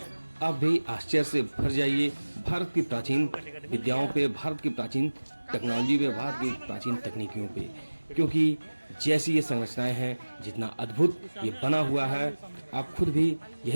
आप भी आश्चर्य से भर जाइए भारत की प्राचीन विद्याओं पे, भारत की प्राचीन टेक्नोलॉजी पे, भारत की प्राचीन तकनीकियों पे, क्योंकि जैसी ये संरचनाएं हैं, जितना अद्भुत ये बना हुआ है, आप खुद भी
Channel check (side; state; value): both; inverted; correlation -1.00